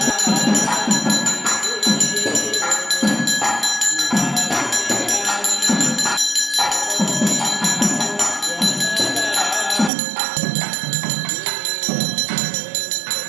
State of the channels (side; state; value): left; drops out; at 9.9 s